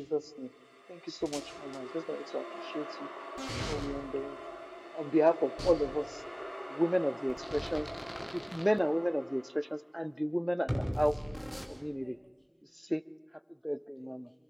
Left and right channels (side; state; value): both; identical; correlation 1.00